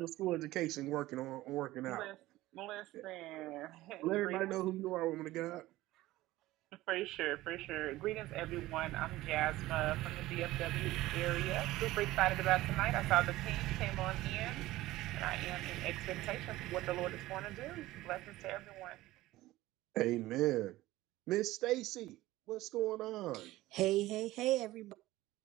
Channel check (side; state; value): left; quieter; 17.2 dB